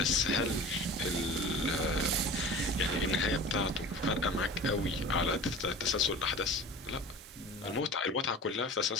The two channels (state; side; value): normal; both; correlation 0.38